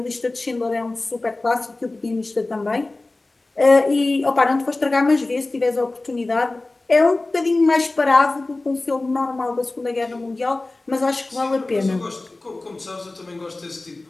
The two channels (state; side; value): quieter; right; 3.1 dB